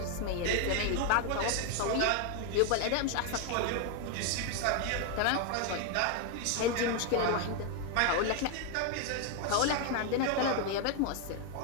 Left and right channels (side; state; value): both; different; correlation 0.01